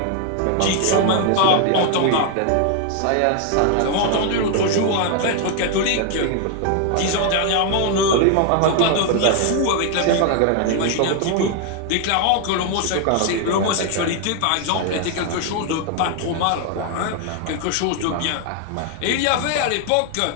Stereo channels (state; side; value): different; both; correlation 0.00